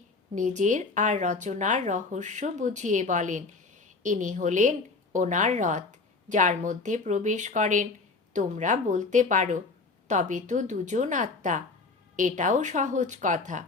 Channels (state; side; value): quieter; right; 3.9 dB